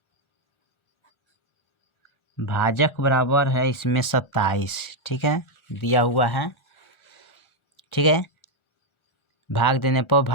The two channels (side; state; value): right; late; 1.4 ms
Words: भाजक बराबर है इसमें 27, ठीक है, दिया हुआ है, ठीक है। भाग देने पर